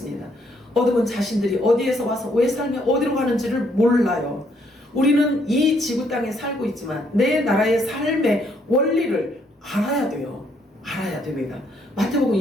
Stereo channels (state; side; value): normal; both; correlation 0.70